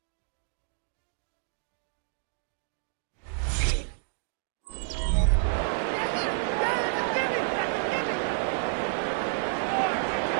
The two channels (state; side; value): silent; left; digital silence